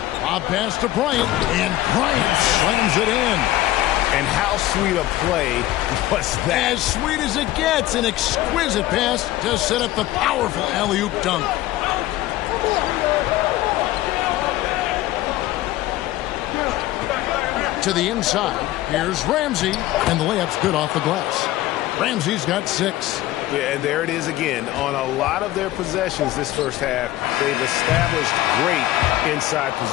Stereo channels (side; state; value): right; quieter; 15.6 dB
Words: Bob pass to Bryant, and Bryant slams it in. And how sweet a play was that? As sweet as it gets. An exquisite pass to set up the powerful alley-oop dunk. To the inside. Here's Ramsey. And the layup's good off the glass. Ramsey's got 6. Yeah, and there it is again. On a lot of their possessions this first half, they've established great inside